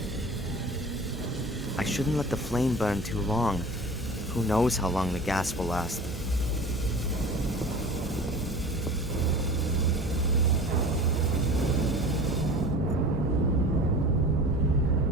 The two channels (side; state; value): both; normal; correlation 0.38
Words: I shouldn't let the flame burn too long. Who knows how long the gas will last.